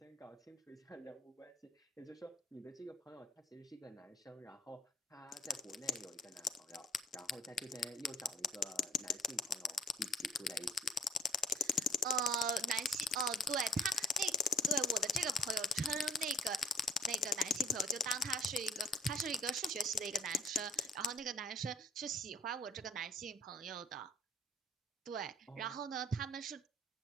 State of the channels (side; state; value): both; normal; correlation 0.61